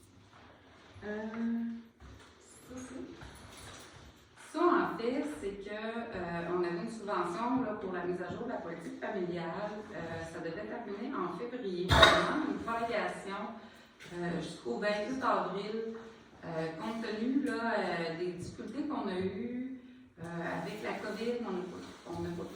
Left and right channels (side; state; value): both; identical; correlation 1.00